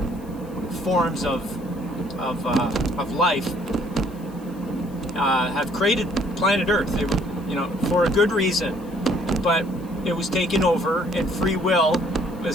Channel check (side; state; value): left; noise; hiss, 26 dB below the sound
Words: forms of life have created planet Earth, for a good reason. but it was taken over, and free will